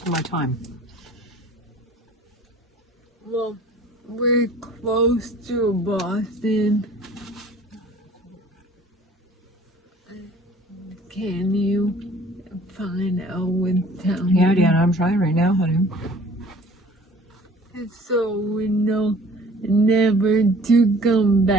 my time. Well, we're close to Boston. Can you find out what town? Yeah, Deanna, I'm trying right now, honey. So we know never to come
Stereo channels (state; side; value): normal; both; correlation 0.50